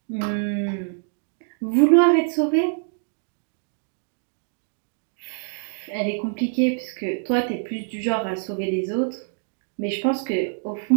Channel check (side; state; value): left; silent; 62 dB below the other